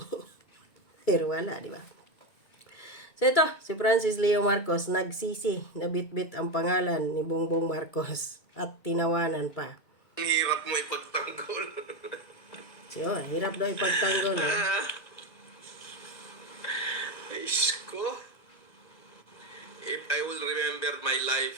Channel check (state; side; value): late; right; 2.2 ms